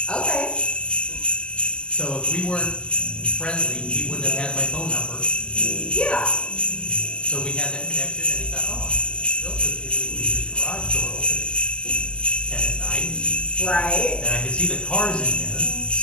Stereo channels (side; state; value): right; late; 0.050 ms